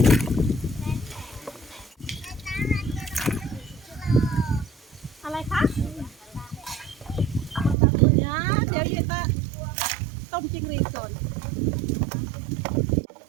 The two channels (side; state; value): left; drops out; at 7.8 s